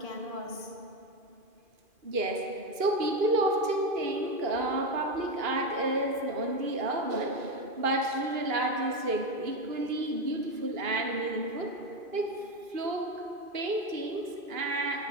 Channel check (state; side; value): late; left; 2.5 ms